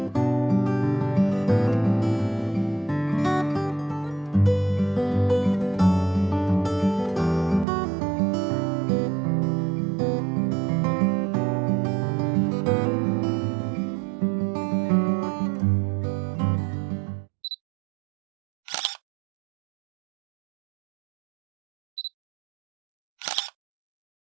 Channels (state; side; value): drops out; left; at 7.7 s